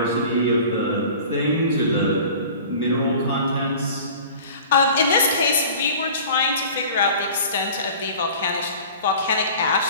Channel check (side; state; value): both; inverted; correlation -0.42